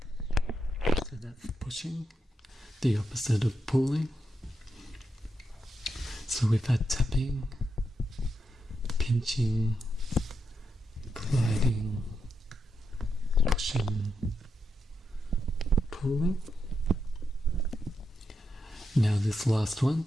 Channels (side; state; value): both; normal; correlation 0.84